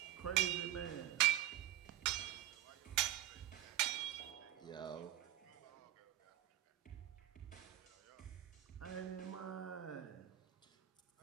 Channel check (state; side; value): quieter; left; 13.8 dB